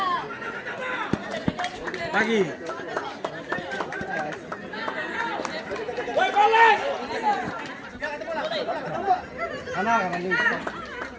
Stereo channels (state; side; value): identical; both; correlation 1.00